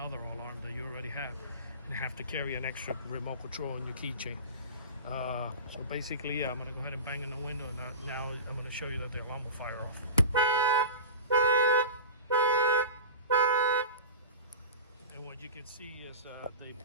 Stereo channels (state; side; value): inverted; both; correlation -0.31